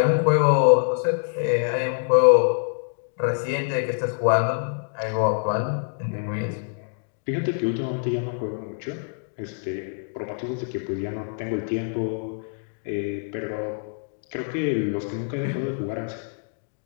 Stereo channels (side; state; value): right; silent; digital silence